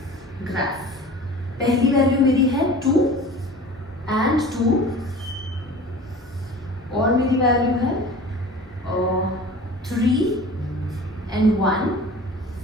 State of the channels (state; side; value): normal; both; correlation 0.41